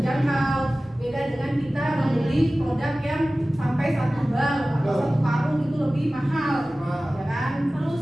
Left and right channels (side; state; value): both; normal; correlation 0.97